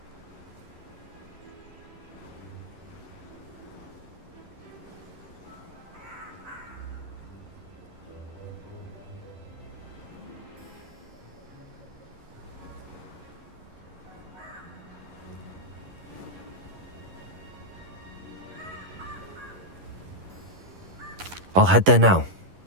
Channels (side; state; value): left; late; 11 ms